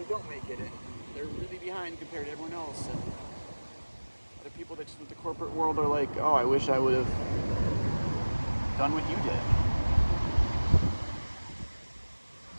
don't make it, and they're really behind compared to everyone else. And other people that just with the corporate world are like, oh, I wish I would have done what you did.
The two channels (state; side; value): inverted; both; correlation -1.00